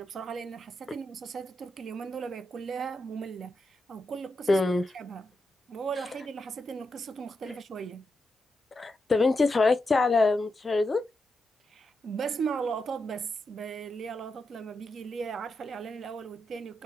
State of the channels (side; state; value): both; normal; correlation 0.86